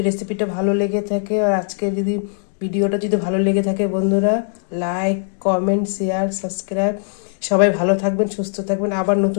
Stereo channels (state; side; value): silent; right; digital silence